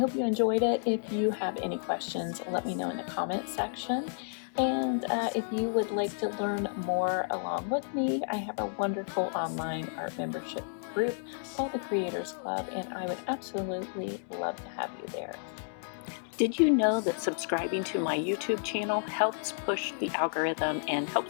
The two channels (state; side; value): silent; right; 57 dB below the other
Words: you enjoyed it. If you have any questions, let me know in the comment section. And if you would like to learn more along with me, I have a wonderful online art membership group called the Creators Club, and I would absolutely love to have you there. Did you know that subscribing to my YouTube channel helps push the algorithm and